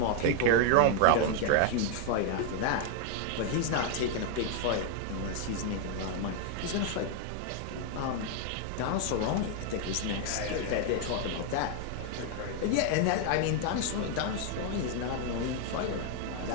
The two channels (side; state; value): both; different; correlation 0.00